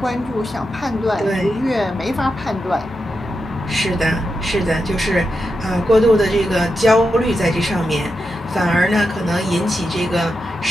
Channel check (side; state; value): both; normal; correlation 0.87